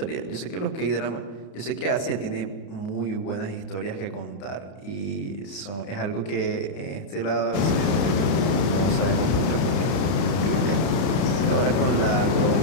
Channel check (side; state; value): right; late; 31 ms